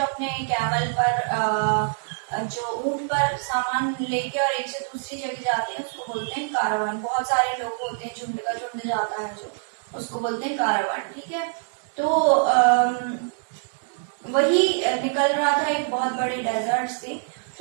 अपने कैमल पर जो ऊंट पर सामान लेके और एक से दूसरी जगह जाते हैं उसको बोलते हैं कारावान। बहुत सारे लोग होते हैं, झुंड का झुंड जाता है जो, उसको बोलते हैं कारावान। ठीक है, तो वही निकल रहा था एक बहुत बड़े डेजर्ट से।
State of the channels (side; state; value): left; silent; digital silence